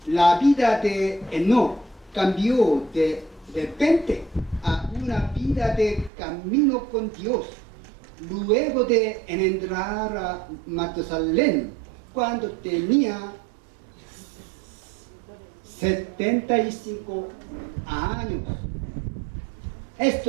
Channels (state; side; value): drops out; left; at 6.1 s